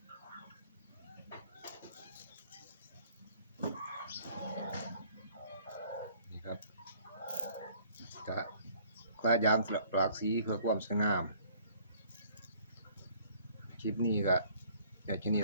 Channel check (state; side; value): inverted; both; correlation -0.57